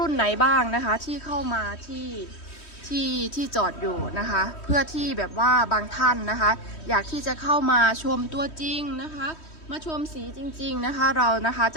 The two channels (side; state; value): right; late; 3.1 ms